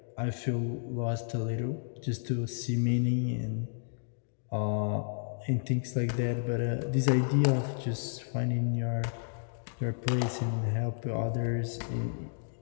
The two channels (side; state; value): right; silent; digital silence